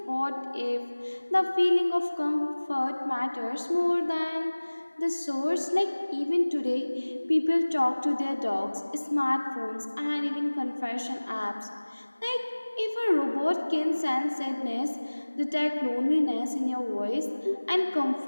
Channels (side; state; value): both; inverted; correlation -1.00